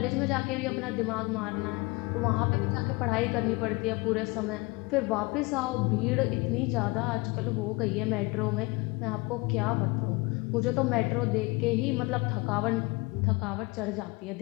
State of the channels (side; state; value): right; quieter; 25.2 dB